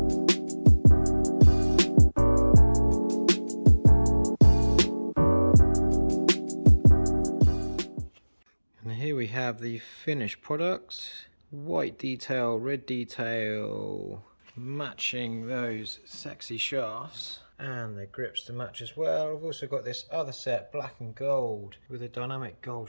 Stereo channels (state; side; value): inverted; both; correlation -1.00